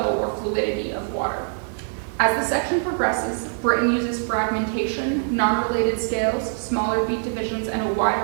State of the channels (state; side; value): silent; left; 63 dB below the other